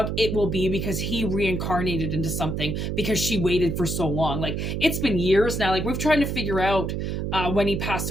it will be because he reincarnated into something, because she waited for so long. Like, it's been years now. Like, we've tried to figure out when he passed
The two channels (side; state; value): right; noise; hum, 2 dB below the sound